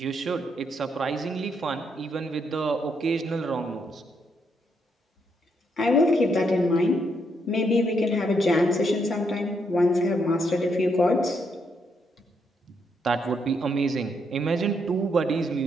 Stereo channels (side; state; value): both; normal; correlation 0.76